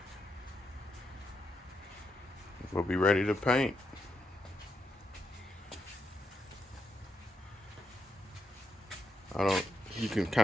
We'll be ready to paint. You can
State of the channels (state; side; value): normal; both; correlation 0.82